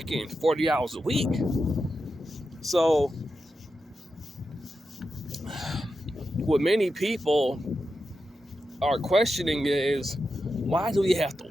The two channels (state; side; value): normal; both; correlation 0.89